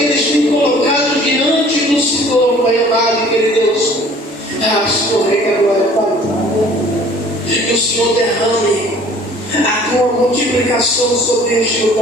eles têm colocado diante do Senhor, Pai amado, querido Deus. Senhor, Rei da Glória, Pai, que o Senhor derrame a tua multiplicação sobre este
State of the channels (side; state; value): both; normal; correlation 0.52